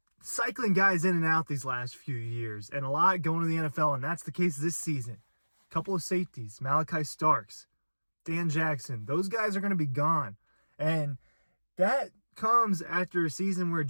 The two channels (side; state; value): both; inverted; correlation -1.00